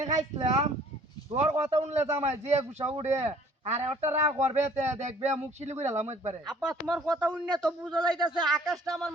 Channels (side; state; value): both; normal; correlation 0.55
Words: খাইছিলাম তোর কথা শুনলে জামাই যে গুছা উড়ে আর একটা রাগ করবে দেখবে মুখ শিলি করে এলাম একবারে। আপা তোমার কথা শুনে তো বুঝা যাইতাছে আকাশটা আমার